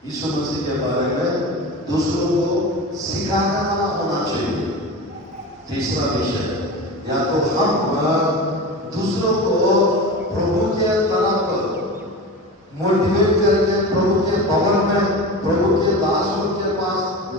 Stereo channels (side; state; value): both; normal; correlation 0.29